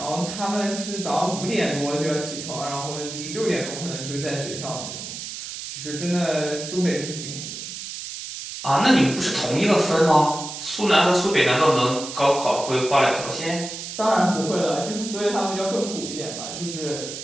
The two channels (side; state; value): right; noise; hiss, 8 dB below the sound